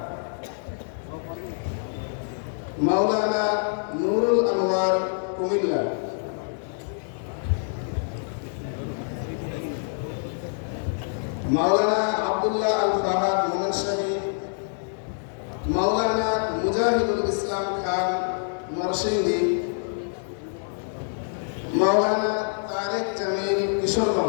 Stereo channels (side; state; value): right; silent; digital silence